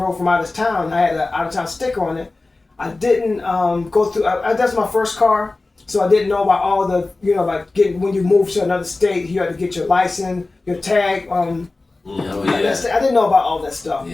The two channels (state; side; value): quieter; right; 3.3 dB